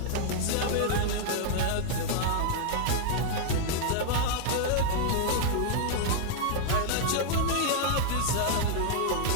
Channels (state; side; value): different; both; correlation 0.00